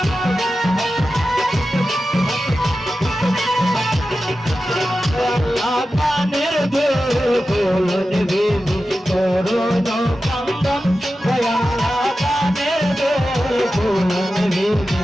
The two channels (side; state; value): both; normal; correlation 0.93